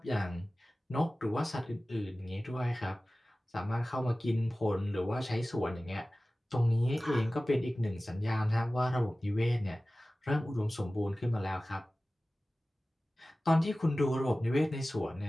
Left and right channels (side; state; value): both; normal; correlation 0.97